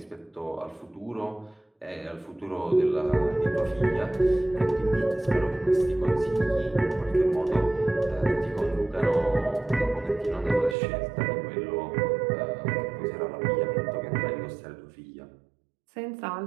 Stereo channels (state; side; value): drops out; left; at 10.8 s